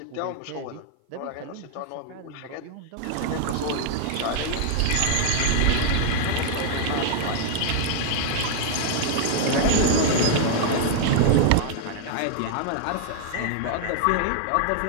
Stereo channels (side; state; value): both; different; correlation 0.00